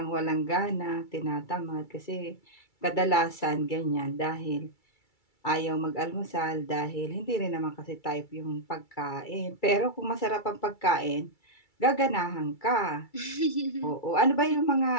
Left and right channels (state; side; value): late; right; 2.3 ms